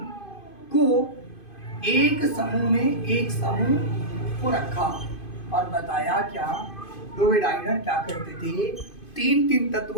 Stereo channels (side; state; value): right; late; 2.5 ms